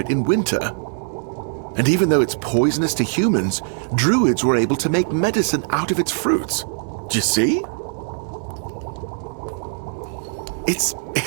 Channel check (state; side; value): silent; left; 65 dB below the other